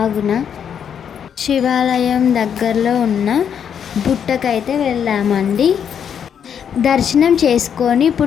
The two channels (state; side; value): quieter; right; 8.1 dB